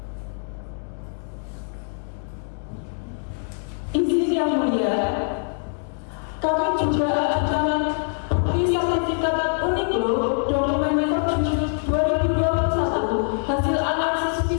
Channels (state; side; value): silent; right; 63 dB below the other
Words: Izin Yang Mulia, kami juga ajukan bukti sertifikat Uniqlo dokumen Perjuni 2021 hasil analisis